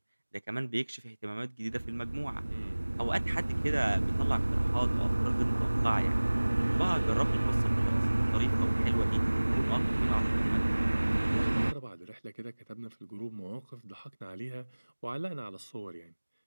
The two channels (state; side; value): inverted; both; correlation -1.00